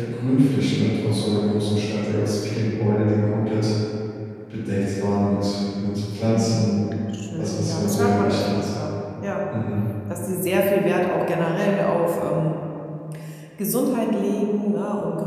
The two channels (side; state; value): both; identical; correlation 1.00